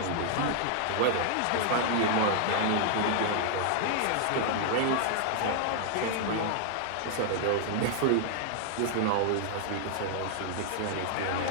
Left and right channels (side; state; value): both; different; correlation 0.00